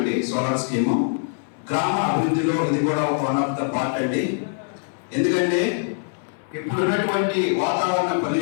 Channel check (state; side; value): silent; right; 63 dB below the other